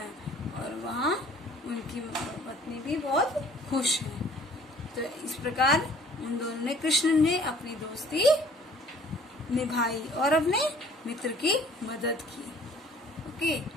और वहाँ उनकी पत्नी भी बहुत खुश है। तो इस प्रकार उन दोनों ने, कृष्ण ने अपनी दोस्ती निभाई और अपने मित्र की मदद की। ओके,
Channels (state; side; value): normal; both; correlation 0.54